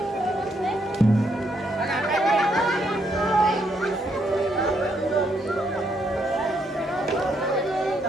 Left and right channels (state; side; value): normal; both; correlation 0.75